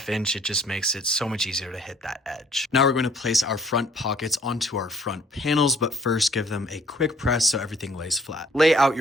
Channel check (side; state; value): both; normal; correlation 0.59